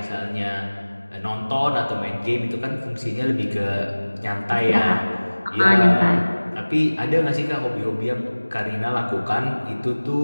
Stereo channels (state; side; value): inverted; both; correlation -1.00